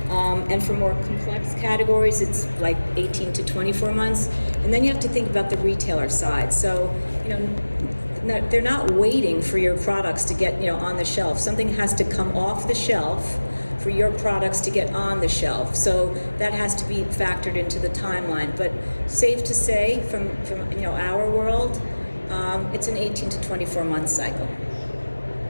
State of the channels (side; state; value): both; inverted; correlation -1.00